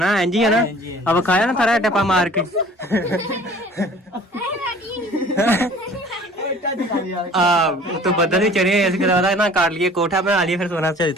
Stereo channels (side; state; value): both; normal; correlation 0.49